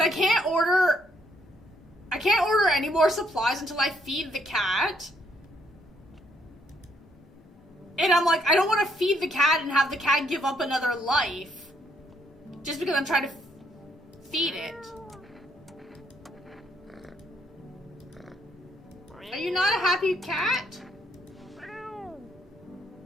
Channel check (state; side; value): normal; both; correlation 0.71